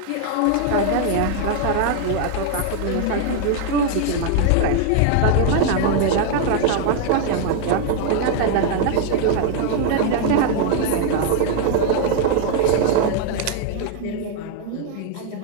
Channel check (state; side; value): different; both; correlation 0.00